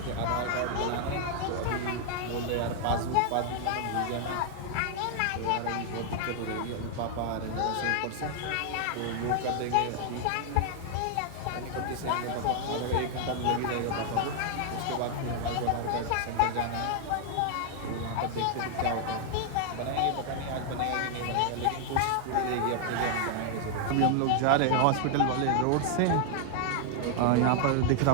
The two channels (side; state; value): both; different; correlation 0.00